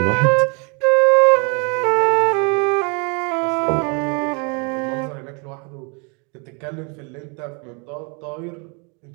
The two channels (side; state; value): left; quieter; 33.7 dB